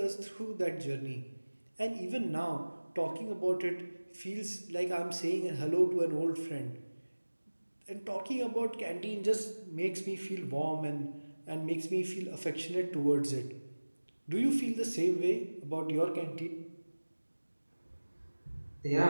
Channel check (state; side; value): inverted; both; correlation -1.00